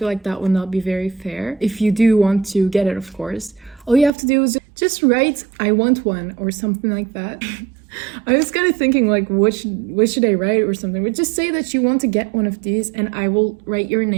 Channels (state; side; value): drops out; left; at 4.1 s